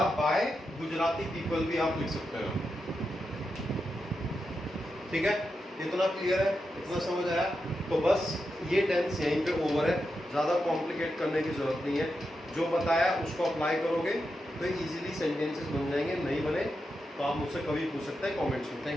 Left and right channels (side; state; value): both; normal; correlation 0.87